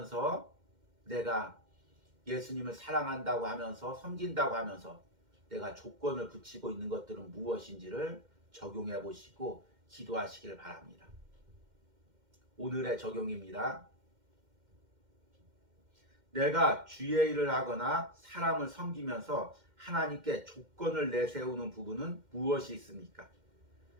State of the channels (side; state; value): left; late; 2.1 ms